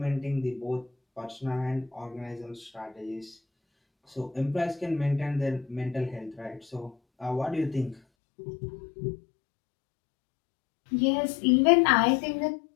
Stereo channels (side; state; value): right; drops out; at 8.0 s